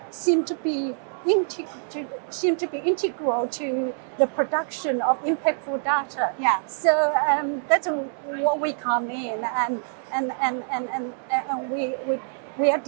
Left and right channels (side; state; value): left; silent; 61 dB below the other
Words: seem to be integral to the production of impactful data. Yeah. So that's what we come in, and we are